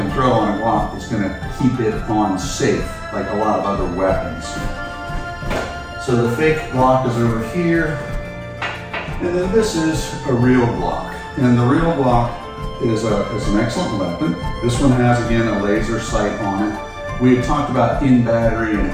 throw on a Glock that's going to keep it on safe, like a lot of other weapons. So the fake Glock is over here, and then this is a real Glock. And the real Glock is an excellent weapon. This one has, again, a laser sight on it. We had talked about in battery and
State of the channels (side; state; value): both; identical; correlation 1.00